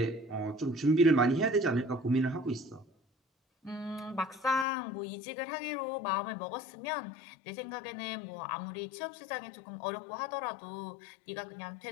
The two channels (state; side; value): drops out; right; at 4.7 s